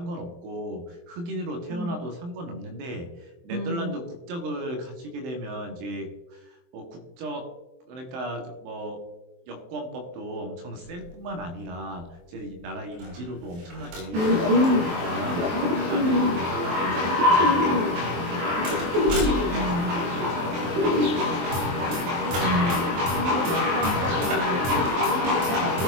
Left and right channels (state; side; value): late; left; 23 ms